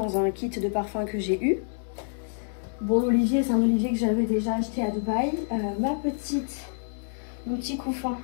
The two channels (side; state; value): right; silent; digital silence